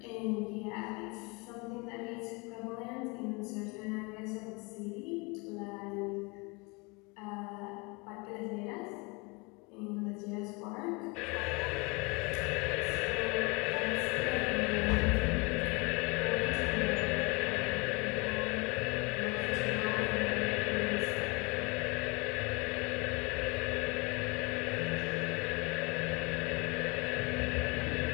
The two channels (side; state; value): right; quieter; 28.3 dB